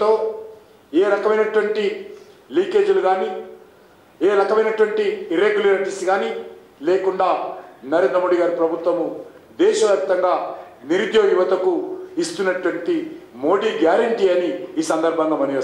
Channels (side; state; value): both; identical; correlation 1.00